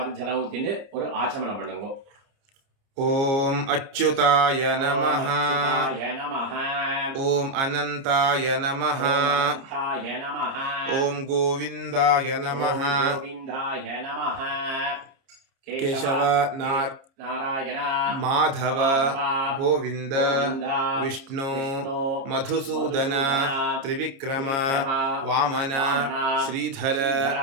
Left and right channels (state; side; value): late; left; 30 ms